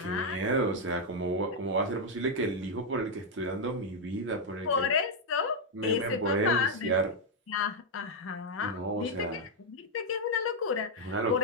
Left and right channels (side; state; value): both; normal; correlation 0.00